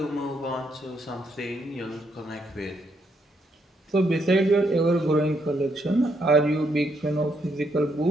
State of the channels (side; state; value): both; normal; correlation 0.75